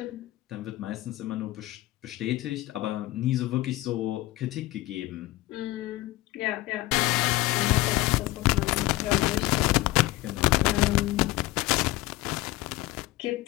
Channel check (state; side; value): quieter; right; 18.4 dB